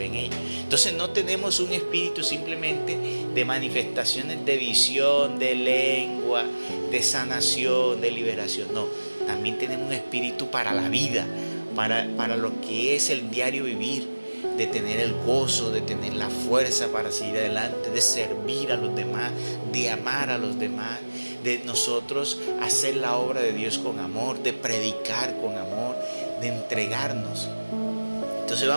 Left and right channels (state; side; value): inverted; both; correlation -1.00